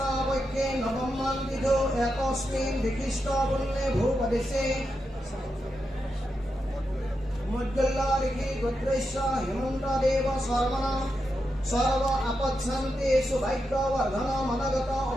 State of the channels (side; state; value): both; normal; correlation 0.86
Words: বৈকে নবমান বিধ একস্মিন বিশিষ্ট বন্যে ভূপদেশে মধ্যল্লারিখি গোত্রেশ্য হেমন্ত দেব শর্মণ সর্ব আপচ্ছন্তে সুভাগ্যবর্ধন মনগত